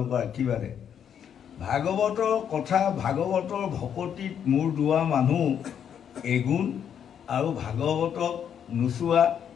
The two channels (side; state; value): right; quieter; 8.6 dB